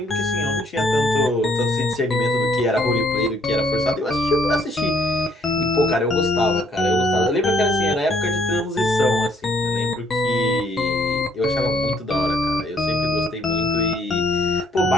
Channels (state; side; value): normal; both; correlation 0.65